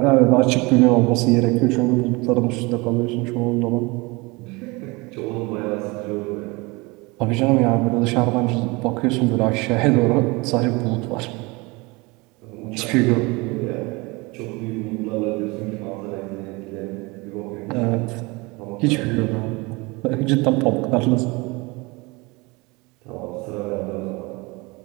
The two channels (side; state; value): left; quieter; 25.4 dB